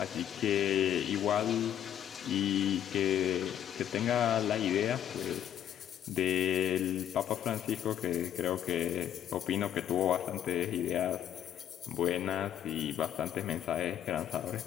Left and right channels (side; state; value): right; quieter; 10.3 dB